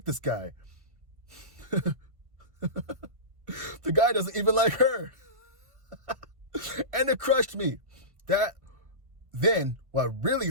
this guy. The guy doesn't even like her. And it crushed me. Then what really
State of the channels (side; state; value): left; late; 1.5 ms